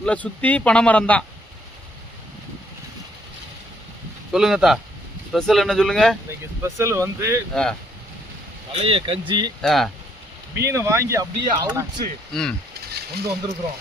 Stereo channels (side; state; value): both; normal; correlation 0.68